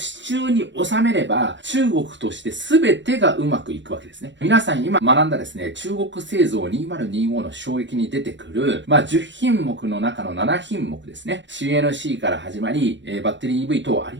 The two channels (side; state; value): left; late; 0.53 ms